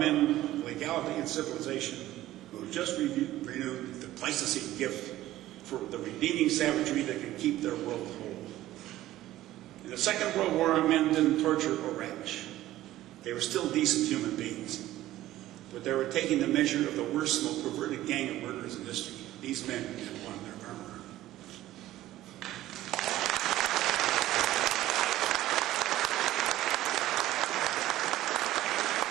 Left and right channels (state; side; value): quieter; left; 14.9 dB